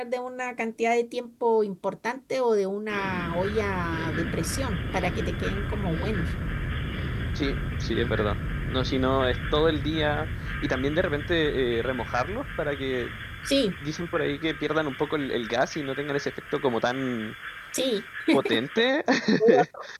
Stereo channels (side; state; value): both; identical; correlation 1.00